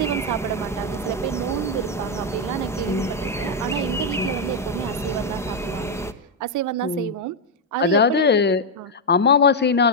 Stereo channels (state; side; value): normal; both; correlation 0.01